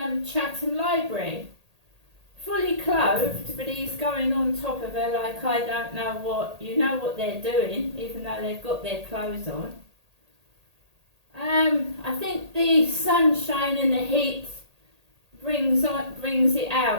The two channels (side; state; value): left; late; 1.8 ms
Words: Library. Fully clothed, but he's going on top of her like I don't know what. You know what they're doing, even though they've got their clothes on. I think the sunshine and the heat brings it